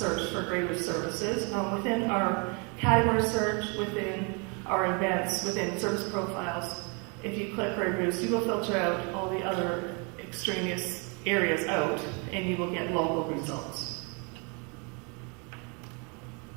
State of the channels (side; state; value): left; quieter; 33.6 dB